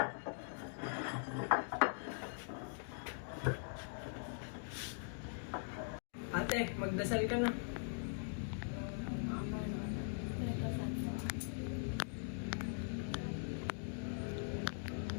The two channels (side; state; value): right; silent; digital silence